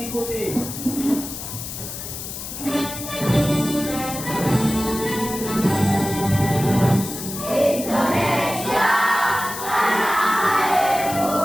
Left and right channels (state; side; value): noise; left; hiss, 8 dB below the sound